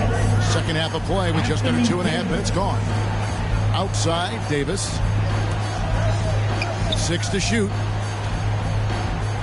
Second half of play with just under 2.5 minutes gone. Outside, Davis. 6 to shoot.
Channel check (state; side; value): identical; both; correlation 1.00